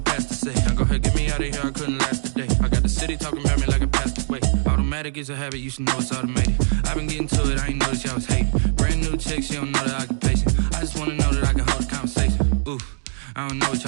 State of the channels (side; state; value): left; silent; digital silence